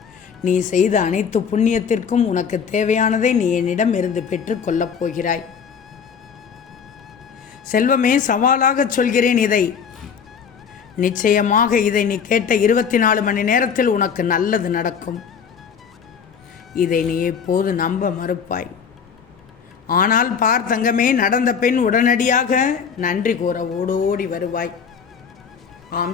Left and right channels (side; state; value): right; quieter; 6.8 dB